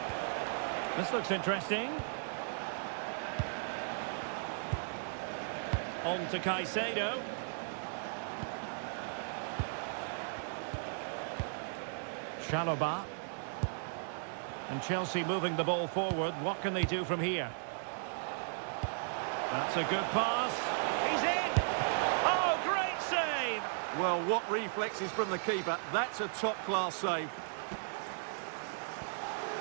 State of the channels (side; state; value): left; silent; digital silence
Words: This looks interesting. On to Caicedo. Chalobah. And Chelsea moving the ball forward. What can they do from here? That's a good pass. He's in! Oh, great save! Well, what reflexes from the keeper. That's a top-class save.